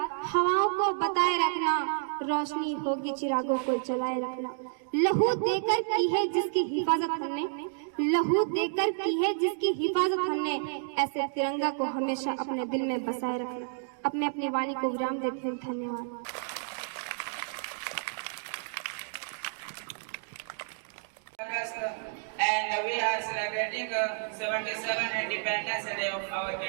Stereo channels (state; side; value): silent; left; digital silence